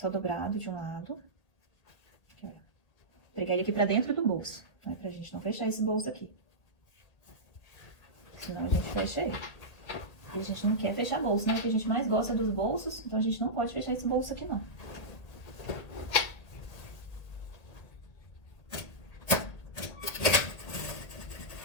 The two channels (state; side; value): late; right; 1.6 ms